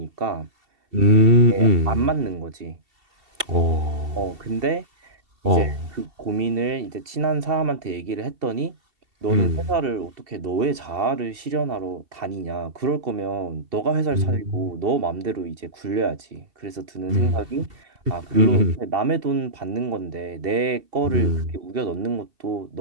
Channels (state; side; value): late; left; 2.7 ms